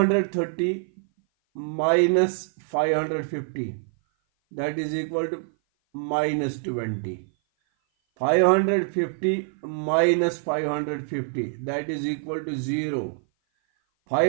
minus 550, that is equal to minus 20। 550 minus 550, that is equal to 0।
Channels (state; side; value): silent; left; 56 dB below the other